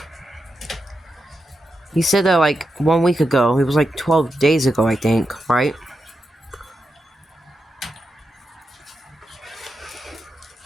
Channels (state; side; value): normal; both; correlation 0.88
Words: He said that, like, 1 week ago. It was, like, 12 days ago, I think, right?